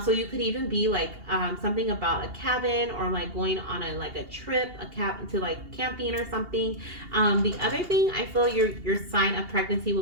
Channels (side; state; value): left; late; 2.8 ms